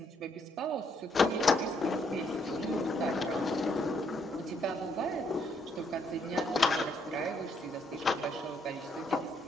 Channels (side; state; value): both; normal; correlation 0.72